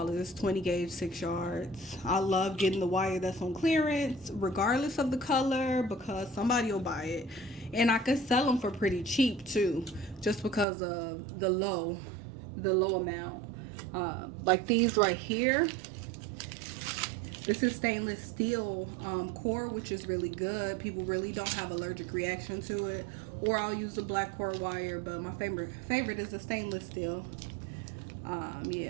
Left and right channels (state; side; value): drops out; left; at 10.7 s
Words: 20 gauge, 6 yards. I love getting the wire that's on clearance, regardless of the color, because somebody will buy it. And I could sell them for pretty cheap too, just because of the low amount. Like these right here. This is stainless steel core, which is really good. People really don't have allergic reaction to it. Or I'll use the black core wire, but my favorite is the stainless steel.